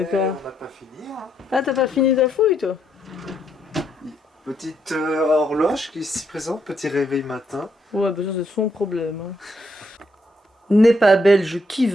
On n'a pas fini. Hein. Ah, t'as pas fini ta fouille, toi? Petite horloge qui s'y présente, petit réveil matin. Ouais, bah ça c'est son problème. Hein. N'est pas belge qui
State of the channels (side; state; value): both; normal; correlation 0.76